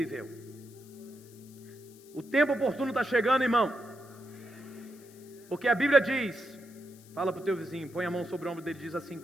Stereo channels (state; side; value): noise; left; hiss, 24 dB below the sound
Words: O tempo oportuno está chegando, irmão. Porque a Bíblia diz, fala para o teu vizinho, põe a mão sobre o ombro dele, diz assim